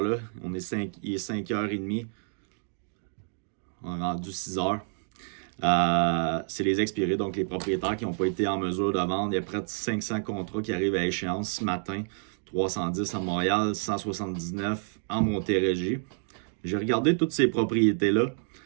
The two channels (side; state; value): left; silent; digital silence